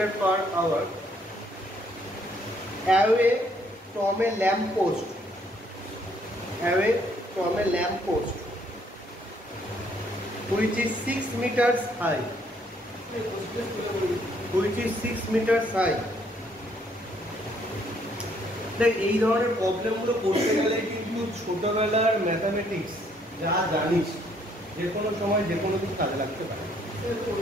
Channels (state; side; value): normal; both; correlation 0.67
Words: per hour away from a lamp post, away from a lamp post which is 6 meters high, which is 6 meters high। দেখ এই ধরনের প্রবলেমগুলো করতে গেলে কিন্তু ছোটবেলার mathematics যা জানিস যে কোনো সময় যে কোনো কিছু কাজে লাগতে পারে,